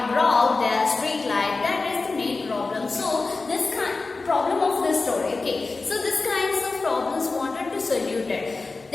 broke their street light. That is the main problem. So this problem of the story. Okay. So this kinds of problems wanted to solve it.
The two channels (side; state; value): right; quieter; 3.8 dB